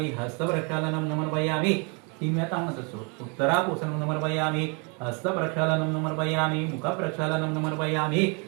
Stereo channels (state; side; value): quieter; left; 33.9 dB